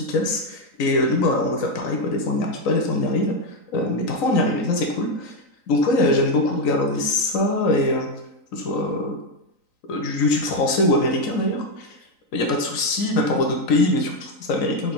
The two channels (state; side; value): late; right; 3.9 ms